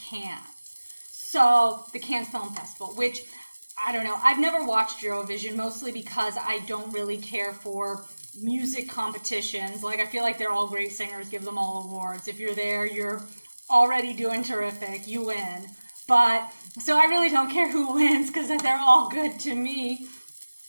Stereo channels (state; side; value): inverted; both; correlation -1.00